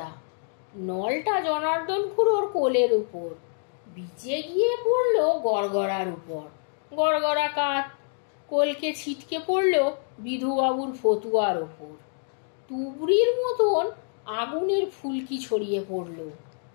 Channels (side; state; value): right; silent; 61 dB below the other